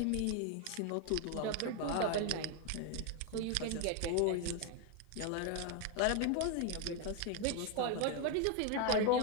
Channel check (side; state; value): both; different; correlation 0.01